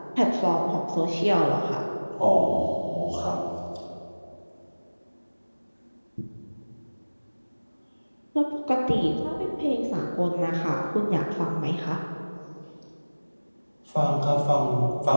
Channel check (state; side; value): inverted; both; correlation -1.00